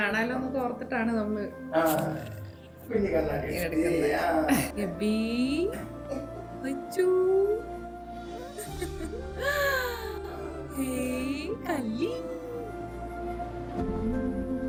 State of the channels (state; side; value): identical; both; correlation 1.00